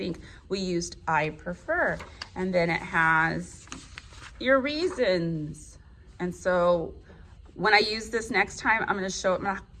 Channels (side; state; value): both; identical; correlation 1.00